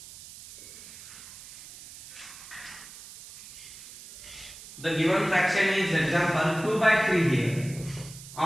The given fraction is example 2 by 3 here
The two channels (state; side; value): noise; right; hiss, 16 dB below the sound